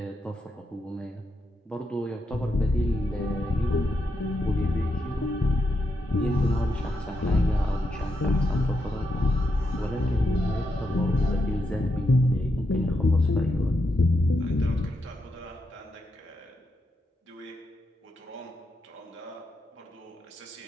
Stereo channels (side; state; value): both; normal; correlation 0.83